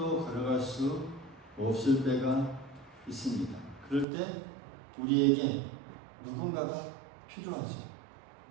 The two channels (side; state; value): left; drops out; at 4.0 s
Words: 걸어갈 수 없을 때가 있습니다. 그럴 때 우리에게 누군가가 필요하죠.